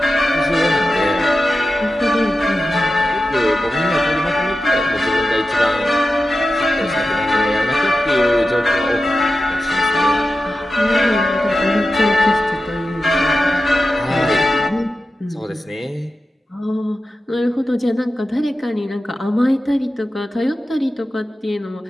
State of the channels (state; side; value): normal; both; correlation 0.92